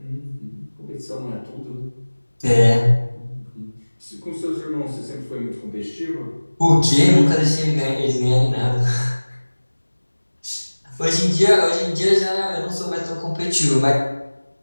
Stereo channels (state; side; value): inverted; both; correlation -1.00